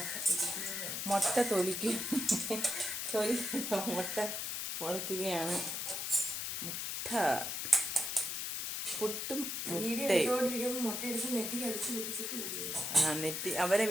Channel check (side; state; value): left; noise; hiss, 2 dB below the sound